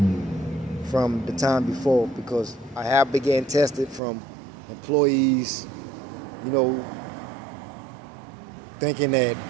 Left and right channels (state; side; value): drops out; left; at 4.0 s